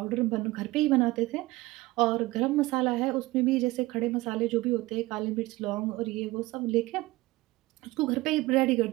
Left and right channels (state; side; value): quieter; left; 19.8 dB